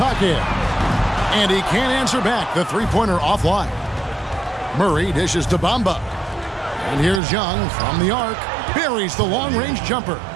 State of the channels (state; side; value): drops out; left; at 7.2 s